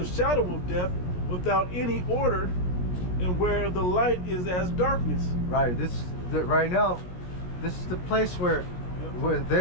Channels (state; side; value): late; right; 17 ms